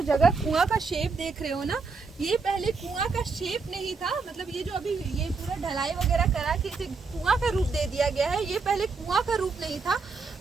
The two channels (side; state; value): left; quieter; 4.6 dB